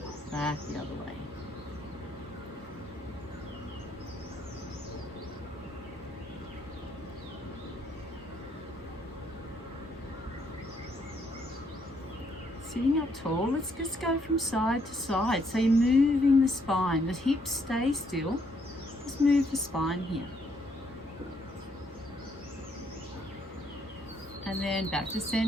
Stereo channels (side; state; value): both; normal; correlation 0.71